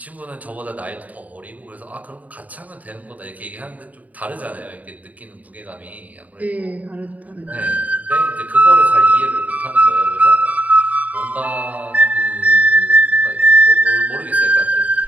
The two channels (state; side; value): late; left; 0.073 ms